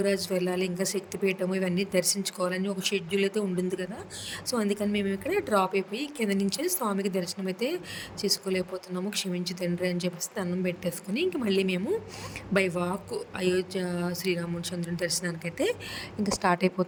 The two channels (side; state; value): both; identical; correlation 1.00